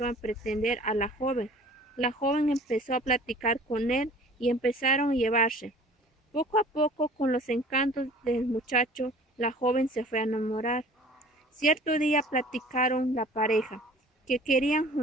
a pretender a la joven. La joven empezó a platicar con él y empezaron a llevarse. Poco a poco, con los encantos del muchacho, la joven se fue a enamorar. Cierto día platicaron la pareja, que querían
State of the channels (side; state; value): both; normal; correlation 0.48